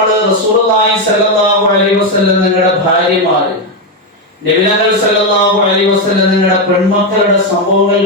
റസൂലുള്ളാഹി സ്വല്ലല്ലാഹു അലൈഹി വസല്ലം നിങ്ങളുടെ ഭാര്യമാര്, നബികൾ സല്ലല്ലാഹു അലൈഹി വസല്ലം നിങ്ങളുടെ പെൺമക്കളുടെ സംഭവങ്ങൾ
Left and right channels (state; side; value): normal; both; correlation 0.06